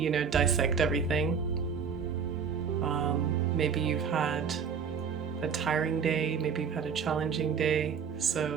dissect everything. Maybe you've had a tiring day, maybe you've had a challenging day.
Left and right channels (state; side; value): quieter; left; 6.5 dB